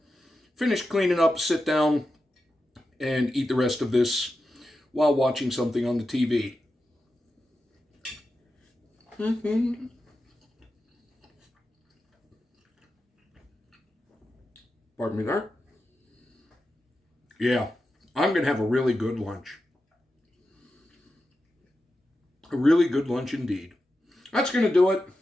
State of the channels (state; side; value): normal; both; correlation 0.90